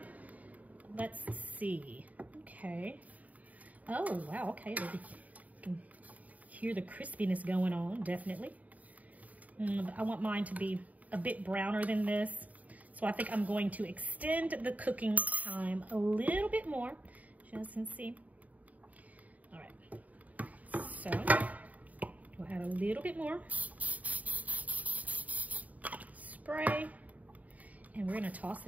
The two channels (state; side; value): late; left; 0.073 ms